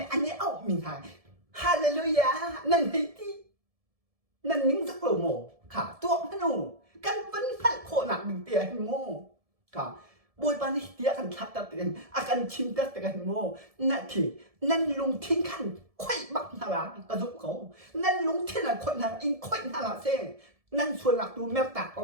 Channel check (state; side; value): late; left; 1.7 ms